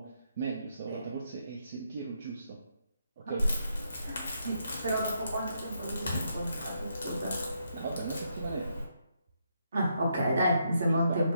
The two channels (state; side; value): inverted; both; correlation -0.78